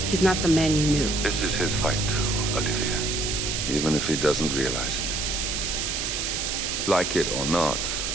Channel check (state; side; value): noise; right; hiss, 1 dB below the sound